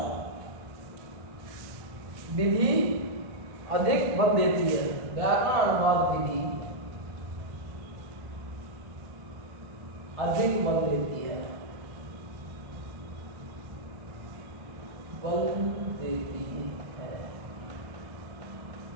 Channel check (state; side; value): late; left; 1.5 ms